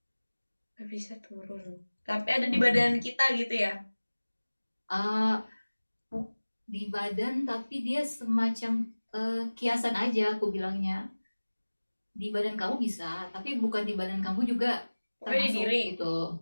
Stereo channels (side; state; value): both; inverted; correlation -1.00